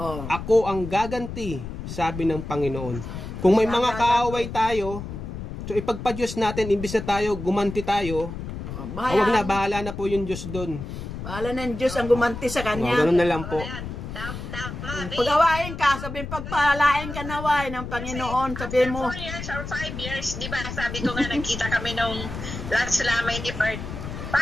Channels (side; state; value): left; noise; rumble, 8 dB below the sound